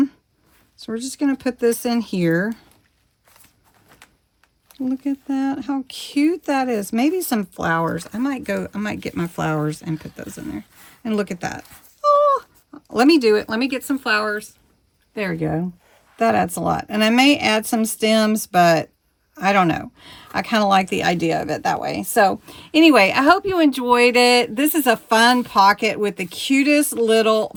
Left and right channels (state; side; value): identical; both; correlation 1.00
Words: So we're just going to put this in here. Look at that. How cute that is. Maybe some flowers. I might get my flowers and put those in there. And look at that. Oh, let me do it. Let me get some flowers. There we go. That adds a lot. And I may add some stems, but I don't know. I kind of like the idea of it that way. So anyway, I hope you enjoyed it. This is a fun pocket with the cutest little